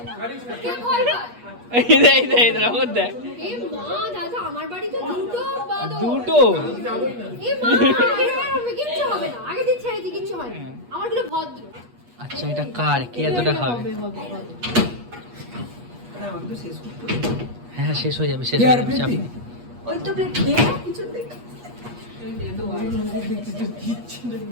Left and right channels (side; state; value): left; late; 8.3 ms